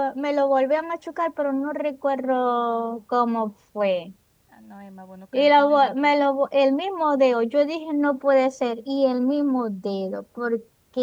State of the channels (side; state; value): both; identical; correlation 1.00